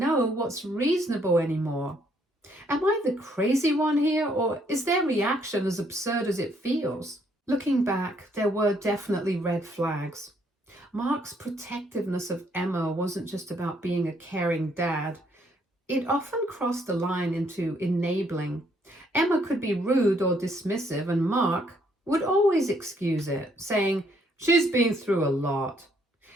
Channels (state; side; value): normal; both; correlation 0.69